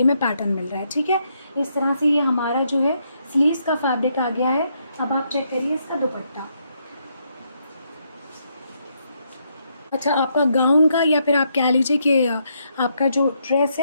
में पैटर्न मिल रहा है। ठीक है, इस तरह से ये हमारा जो है स्लीव्स का फैब्रिक आ गया है। अब आप चेक करिए इसका दुपट्टा। अच्छा, आपका गाउन का या फिर आप कह लीजिए कि आपका जो ड्रेस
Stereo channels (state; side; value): inverted; both; correlation -0.76